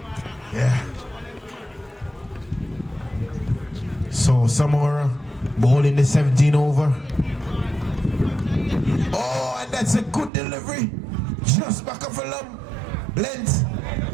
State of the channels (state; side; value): drops out; left; at 10.3 s